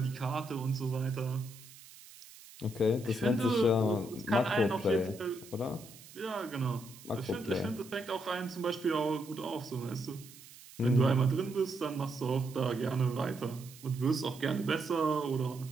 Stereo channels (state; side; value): noise; right; hiss, 19 dB below the sound